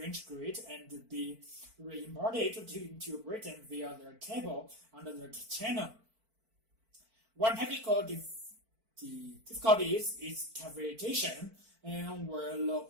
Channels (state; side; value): late; left; 4.5 ms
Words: grid and be re-imported into Britain via the cable under the channel. One technical difficulty is cavitation. and where low